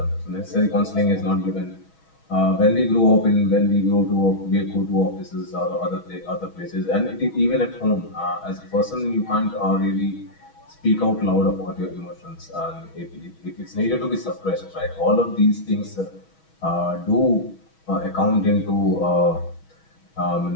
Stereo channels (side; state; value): right; late; 6.2 ms